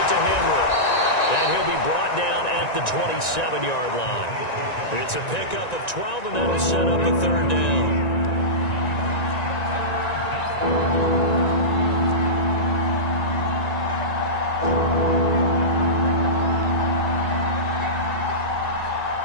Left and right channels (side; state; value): right; late; 1.9 ms